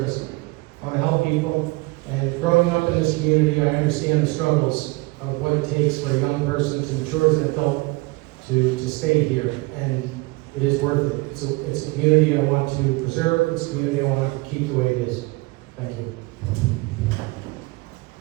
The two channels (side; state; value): left; quieter; 24.1 dB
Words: I want to help people. And growing up in this community, I understand the struggles of what it takes for a young person to mature as an adult to stay here. And it is worth it. It's a community I want to preserve. It's a community I want to keep the way it is. Thank you.